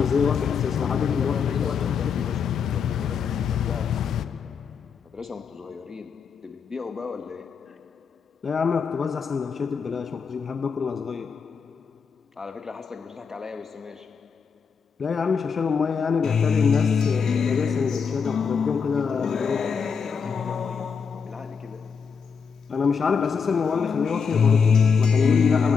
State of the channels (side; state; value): right; quieter; 6.0 dB